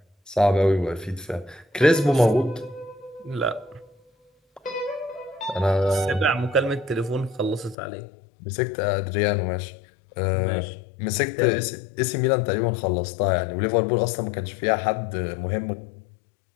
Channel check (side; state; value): right; drops out; at 7.8 s